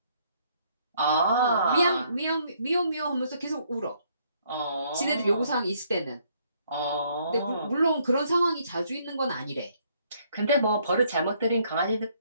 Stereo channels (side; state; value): both; inverted; correlation -0.67